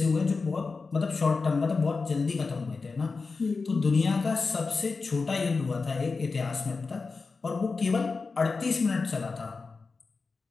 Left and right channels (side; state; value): right; quieter; 4.3 dB